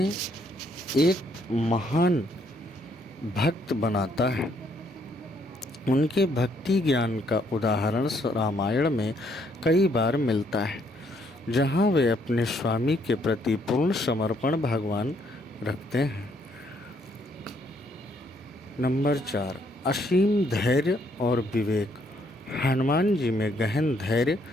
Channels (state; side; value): normal; both; correlation 0.70